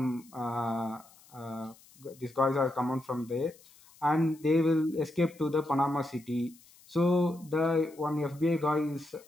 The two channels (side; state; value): left; noise; hiss, 26 dB below the sound